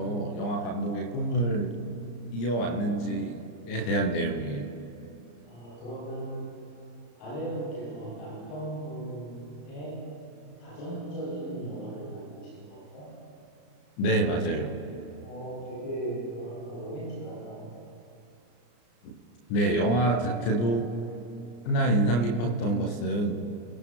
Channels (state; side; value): late; right; 34 ms